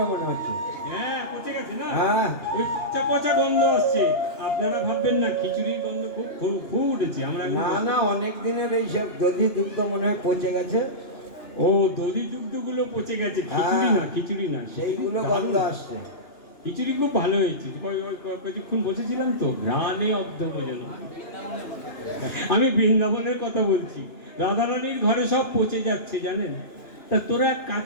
মনে হচ্ছে। হ্যাঁ পচে গেছে না? হ্যাঁ, ওই পচা পচা গন্ধ আসছে। আপনারা ভাববেন না খিচুড়ির গন্ধ খুব খুব খুব উঠেছে। আমরা না না, অনেক দিনের এইসব দধি দুগ্ধ মনে হয় পচে গেছে। ও দধি দুগ্ধগুলো পচে গেছে, খিচুড়ি না, খিচুড়ি না, সেইগুলো গন্ধ আসছে। খিচুড়ি খুব ভালো হয়েছে। কিছুক্ষণ বসেছিলাম তো, ঘ্রাণে অর্ধভোজন। আমি বৃন্দাবনের কথা বলছি। রাধারানীর ঘরে সব পচে যাচ্ছে জানেন। তা তোরা এক কাজ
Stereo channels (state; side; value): late; right; 2.9 ms